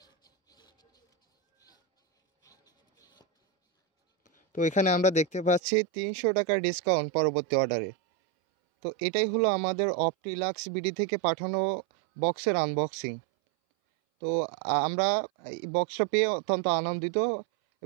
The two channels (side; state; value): left; drops out; at 5.6 s